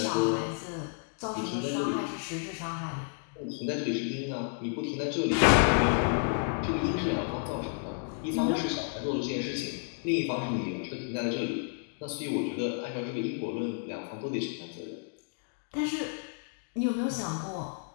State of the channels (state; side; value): silent; right; 57 dB below the other